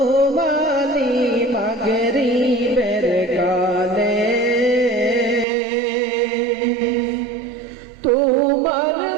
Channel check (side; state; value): left; drops out; at 5.5 s